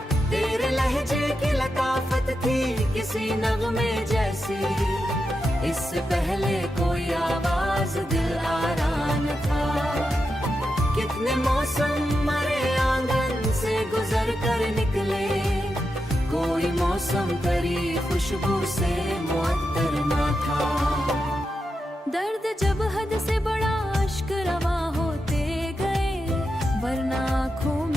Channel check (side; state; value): both; normal; correlation 0.88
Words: तेरे लहजे की लताफत थी किसी नगमे जैसी, इससे पहले कोई आवाज दिल आरा न था। कितने मौसम मरे आंगन से गुजर कर निकले, कोई मौसम तेरी खुशबू से मुअत्तर ना था। दर्द जब हद से बड़ा अश्क रवा होते गए, वरना आँखों